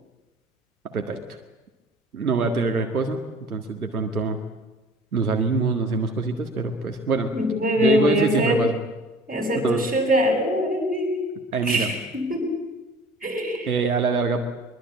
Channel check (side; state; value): both; normal; correlation 0.47